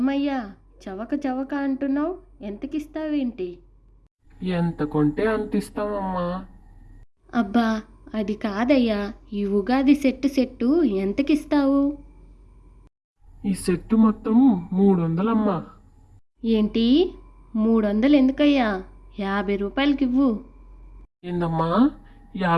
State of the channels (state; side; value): identical; both; correlation 1.00